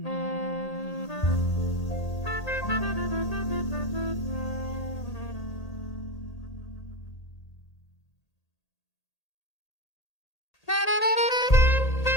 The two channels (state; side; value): late; right; 1.8 ms